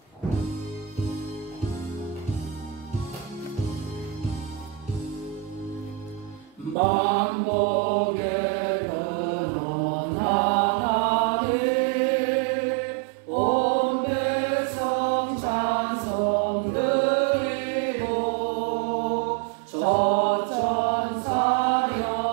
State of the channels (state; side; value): drops out; left; at 6.8 s